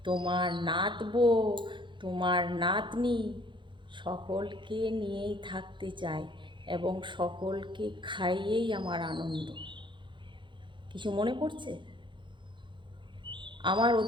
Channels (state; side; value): late; left; 0.23 ms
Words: তোমার নাতবো, তোমার নাতনি, সকলকে নিয়েই থাকতে চাই এবং সকলকে খাইয়েই আমার আনন্দ। কিছু মনে পড়ছে? আমার